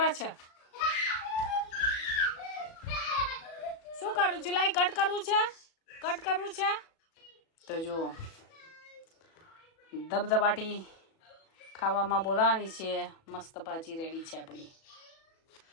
છે. શું કરું છું? લાઈ કટ કરવું છે, કટ કરવું છે. તો જો ધબધબાટી ખાવામાં બોલાવાની છે. મસ્ત ભાજી રેડી છે આપણી.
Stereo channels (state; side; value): late; right; 37 ms